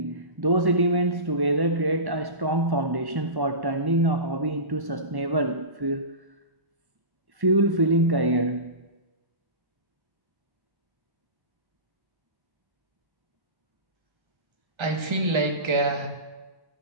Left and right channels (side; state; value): left; late; 1.3 ms